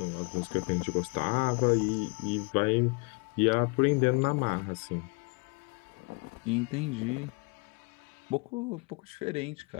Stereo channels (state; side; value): quieter; right; 30.5 dB